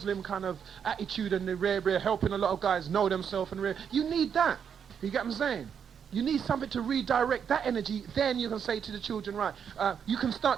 kind of attitude and the rare helping a lot of guys know themselves and rare. You need that. You get what I'm saying? You need something to redirect that energy. Then you can say to the children, right, you can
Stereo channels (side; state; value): left; quieter; 7.6 dB